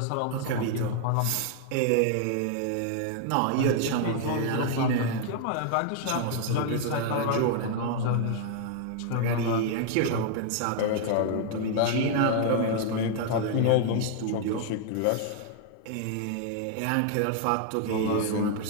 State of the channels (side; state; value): both; different; correlation 0.00